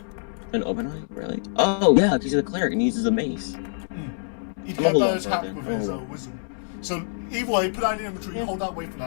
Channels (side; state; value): right; silent; digital silence